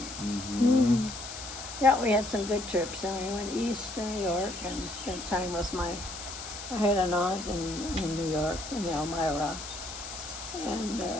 Mm-hmm. Yeah, we had some good trips. And we went east to New York and spent time with I had an aunt in New York, in Elmira, and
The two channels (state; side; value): noise; left; hiss, 10 dB below the sound